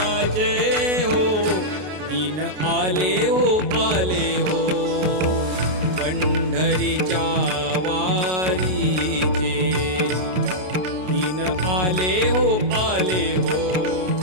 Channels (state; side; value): late; left; 33 ms